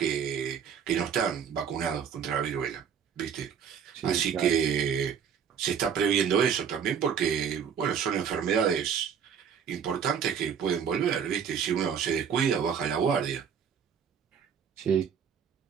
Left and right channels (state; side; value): quieter; left; 7.6 dB